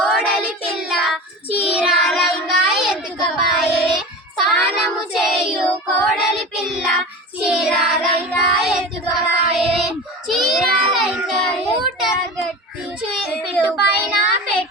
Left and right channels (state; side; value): normal; both; correlation 0.30